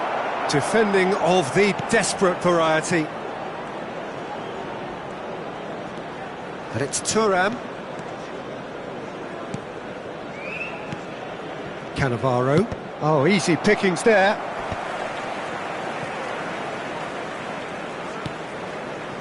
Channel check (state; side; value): identical; both; correlation 1.00